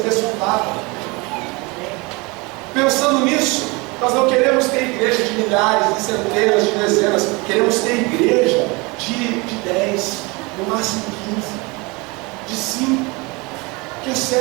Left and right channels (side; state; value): left; quieter; 26.4 dB